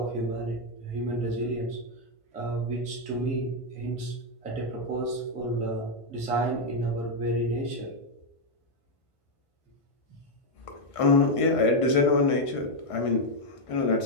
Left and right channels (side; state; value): right; late; 1.5 ms